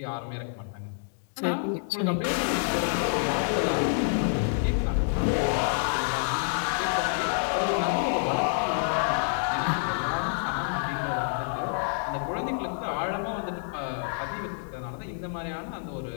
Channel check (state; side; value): silent; right; digital silence